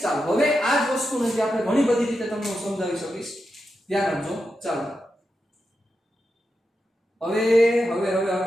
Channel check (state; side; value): normal; both; correlation 0.88